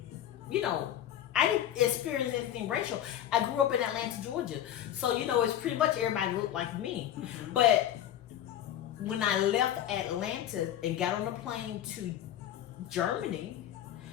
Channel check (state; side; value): quieter; right; 11.2 dB